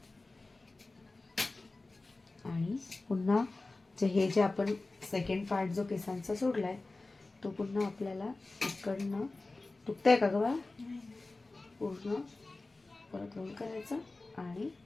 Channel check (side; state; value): right; quieter; 3.2 dB